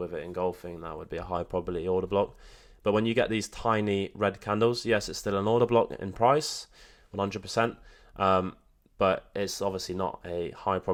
it engulfing. That would be a high probability order block. But when you get these tiny red candles, yes, it's still an order block in price, 100%. But it's obviously not a high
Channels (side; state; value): both; identical; correlation 1.00